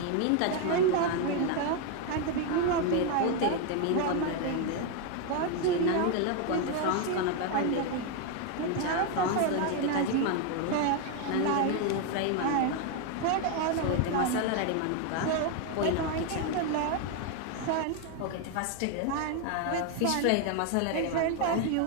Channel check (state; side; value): different; both; correlation 0.01